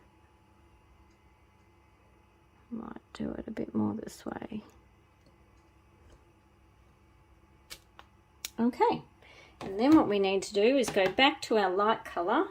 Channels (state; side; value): identical; both; correlation 1.00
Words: might do it a bit more this way. Okay, and then what we need to do is go back to our light colour